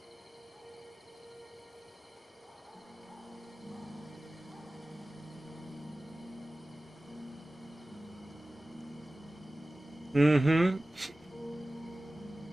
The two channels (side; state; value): both; normal; correlation 0.97